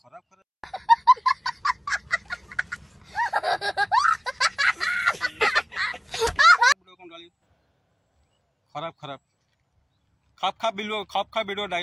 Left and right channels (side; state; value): both; identical; correlation 1.00